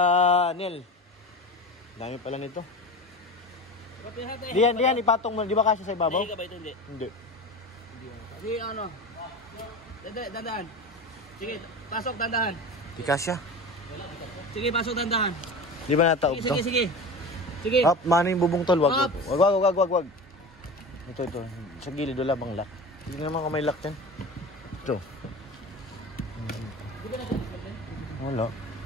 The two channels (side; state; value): both; normal; correlation 0.31